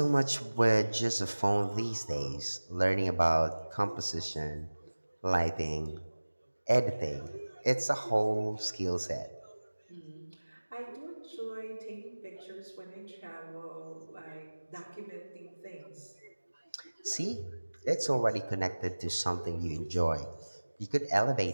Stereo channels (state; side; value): inverted; both; correlation -1.00